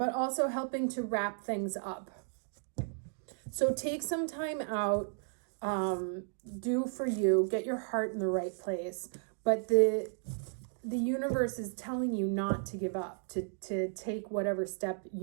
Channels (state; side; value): silent; left; 55 dB below the other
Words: also helping to wrap things up. So take some time out, do for you, get your heart in the right place. But the universe is telling you not to give up, to take whatever step